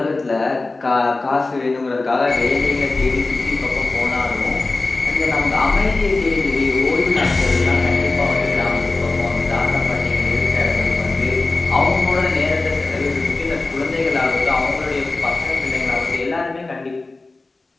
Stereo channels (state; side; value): quieter; right; 3.3 dB